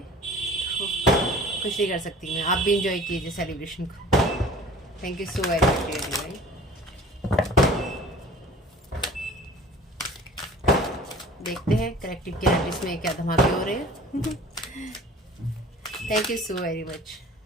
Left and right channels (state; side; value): normal; both; correlation 0.46